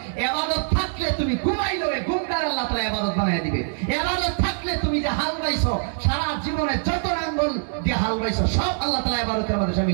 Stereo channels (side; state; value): left; silent; digital silence